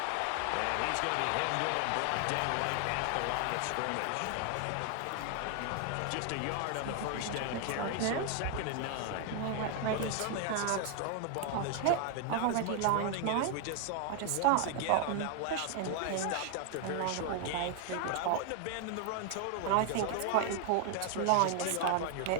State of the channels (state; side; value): different; both; correlation 0.00